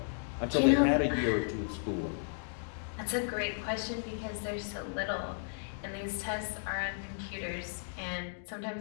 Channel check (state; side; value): silent; right; digital silence